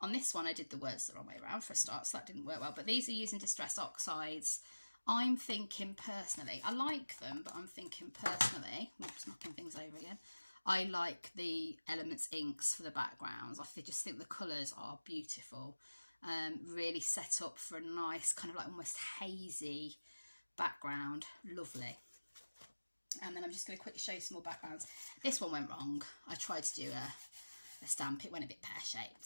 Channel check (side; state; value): both; inverted; correlation -1.00